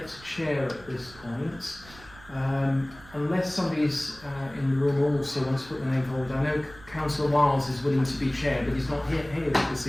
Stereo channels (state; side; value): noise; right; rumble, 21 dB below the sound